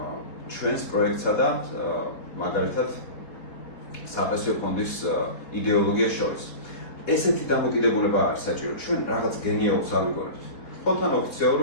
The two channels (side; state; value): right; late; 4.2 ms